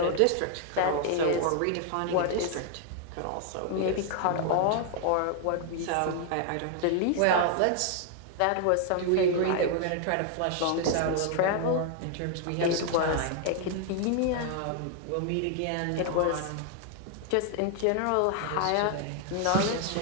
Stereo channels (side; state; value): both; different; correlation 0.00